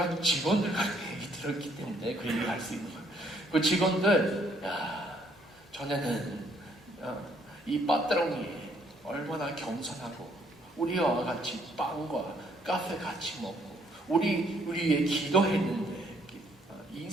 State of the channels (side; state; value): both; normal; correlation 0.67